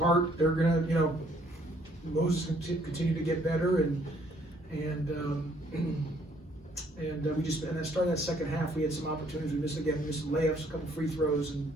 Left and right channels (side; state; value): both; normal; correlation 0.65